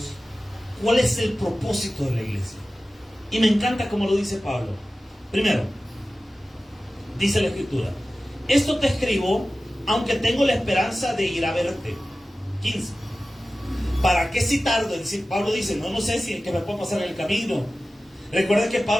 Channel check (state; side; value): normal; both; correlation 0.96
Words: cuál es el propósito de la iglesia. Y me encanta cómo lo dice Pablo. Primero, dice la Escritura: esto te escribo aunque tengo la esperanza de ir a verte. 15. ¿Para qué si tardo? Es decir, Pablo dice, no sé si es que me puedo pasar en el camino. Recuerden que